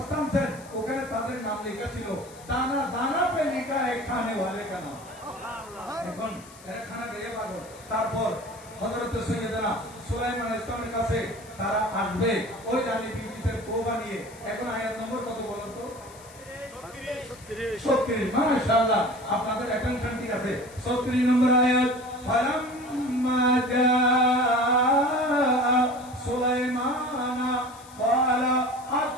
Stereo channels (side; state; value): left; noise; hiss, 21 dB below the sound